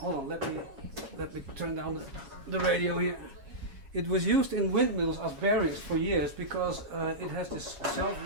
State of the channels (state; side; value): late; left; 7.2 ms